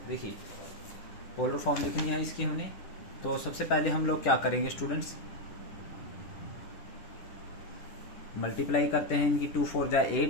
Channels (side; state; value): right; late; 10 ms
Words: देखिए पोलर फॉर्म लिखनी है इसकी हमने। तो सबसे पहले हम लोग क्या करेंगे स्टूडेंट्स, मल्टीप्लाई करते हैं इनकी। 2 4 जा